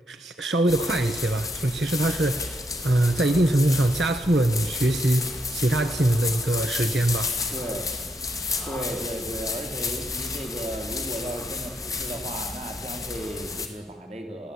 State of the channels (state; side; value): normal; both; correlation 0.78